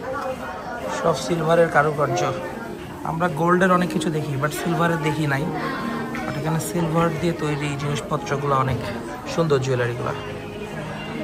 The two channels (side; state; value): both; identical; correlation 1.00